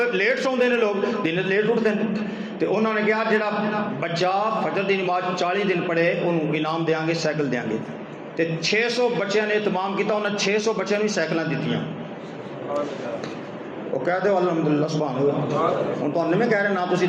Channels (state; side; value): identical; both; correlation 1.00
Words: लेट सौंदे हैं लोग, दिन लेट उठते हैं। तो उन्होंने कहा जो बच्चा फजर की नमाज 40 दिन पढ़े उन्होंने इनाम देंगे, साइकिल देंगे। तो 600 बच्चों ने इतमाम किया, उन्हें 600 बच्चों को साइकिल दीतियाँ। वो कह दो अल्हम्दुलिल्लाह सुभान अल्लाह। हूँ तो नहीं कह रहे ना तुम